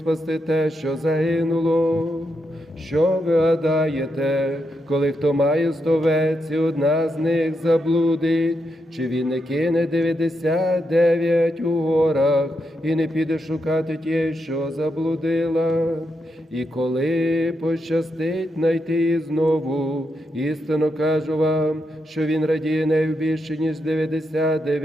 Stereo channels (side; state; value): both; normal; correlation 0.83